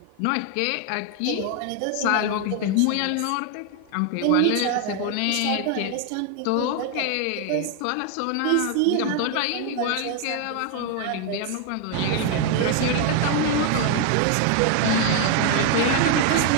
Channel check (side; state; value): both; different; correlation 0.01